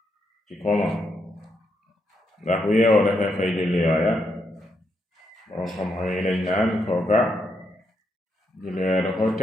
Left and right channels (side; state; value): both; normal; correlation 0.79